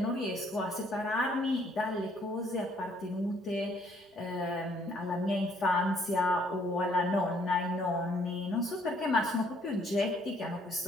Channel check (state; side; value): normal; both; correlation 0.65